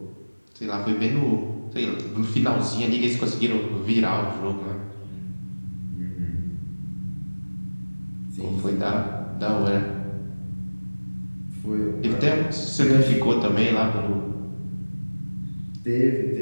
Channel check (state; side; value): inverted; both; correlation -1.00